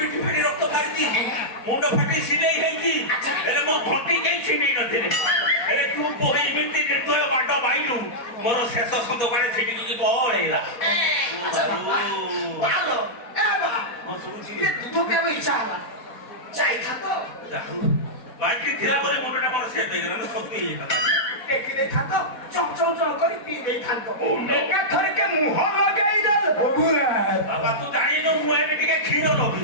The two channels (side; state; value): right; late; 4.1 ms